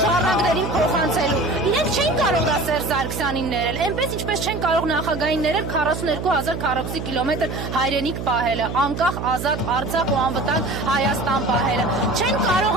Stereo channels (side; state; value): right; noise; hum, 6 dB below the sound